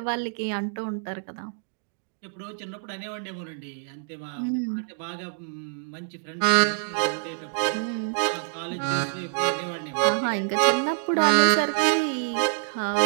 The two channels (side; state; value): left; silent; digital silence